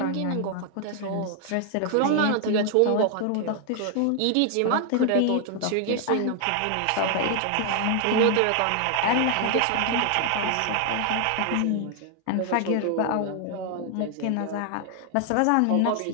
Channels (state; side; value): different; both; correlation 0.00